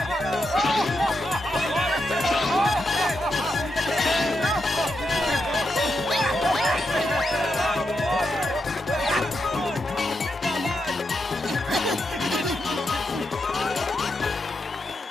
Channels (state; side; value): normal; both; correlation 0.84